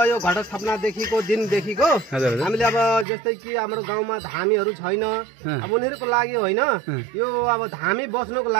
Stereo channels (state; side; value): drops out; left; at 3.1 s